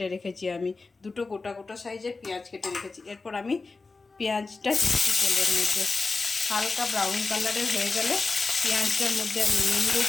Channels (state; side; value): quieter; right; 3.9 dB